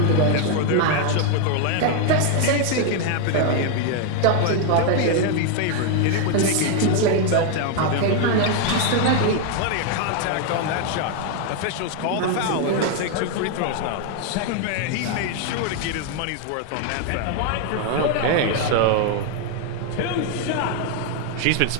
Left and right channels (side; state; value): both; different; correlation 0.00